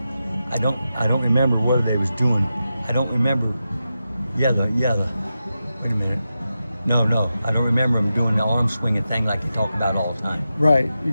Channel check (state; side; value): inverted; both; correlation -0.90